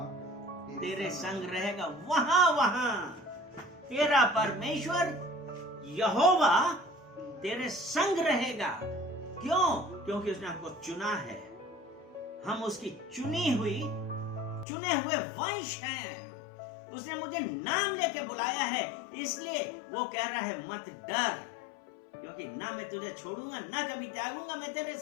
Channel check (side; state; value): right; drops out; at 14.7 s